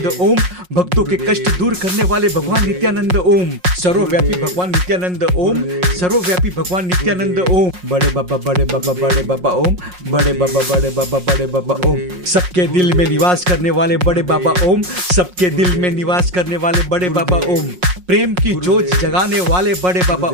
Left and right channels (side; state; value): left; late; 5.5 ms